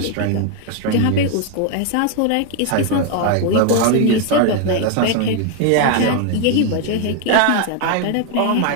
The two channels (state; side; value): different; both; correlation 0.01